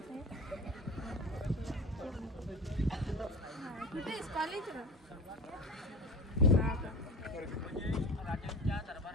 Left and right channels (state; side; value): normal; both; correlation 0.31